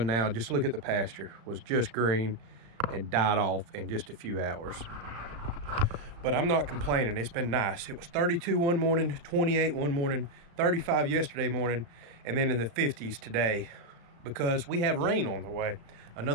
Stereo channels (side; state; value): left; late; 35 ms